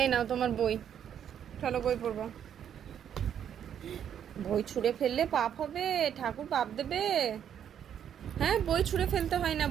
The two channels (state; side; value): quieter; left; 9.1 dB